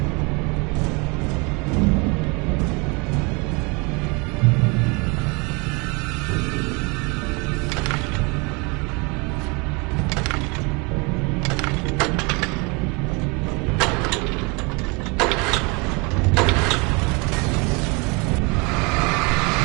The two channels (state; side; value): quieter; left; 29.4 dB